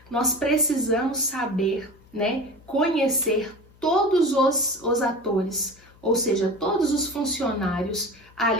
Nós precisamos saber, né, conhecer todos os atores, ou seja, todos os funcionários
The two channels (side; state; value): left; noise; hum, 27 dB below the sound